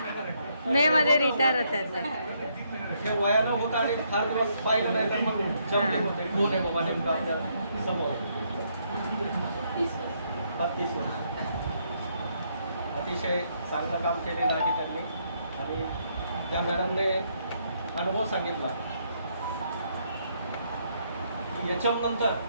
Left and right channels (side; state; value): both; inverted; correlation -0.74